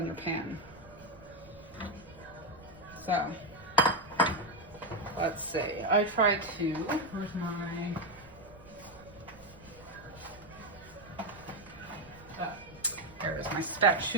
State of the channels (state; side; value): noise; right; rumble, 21 dB below the sound